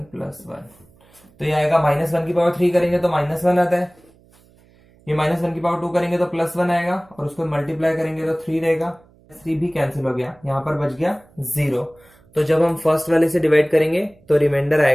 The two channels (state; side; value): noise; right; hum, 30 dB below the sound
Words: +1, तो ये आएगा -1 की पावर 3 करेंगे तो -1 आता है, ये -1 की पावर 2 करेंगे तो +1 आएगा, और उसको मल्टीप्लाई करेंगे तो 3 रहेगा, 3 भी कैंसिल हो गया, यहाँ पर बच गया 0। तो जब हम फर्स्ट वाले से डिवाइड करेंगे तो रिमाइंडर